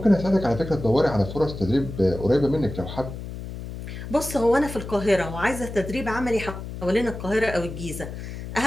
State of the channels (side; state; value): left; noise; hum, 9 dB below the sound